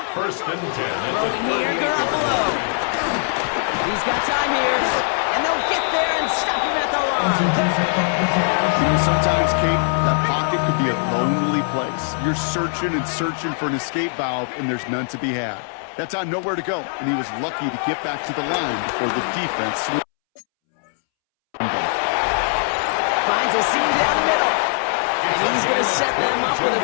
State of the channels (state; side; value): silent; right; 65 dB below the other